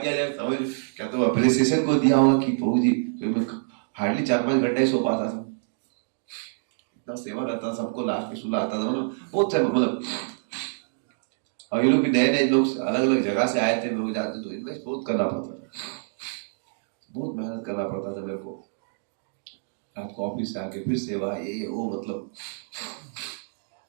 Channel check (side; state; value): left; silent; digital silence